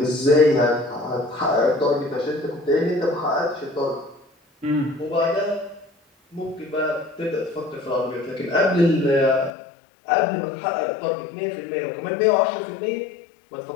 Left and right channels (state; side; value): drops out; right; at 9.5 s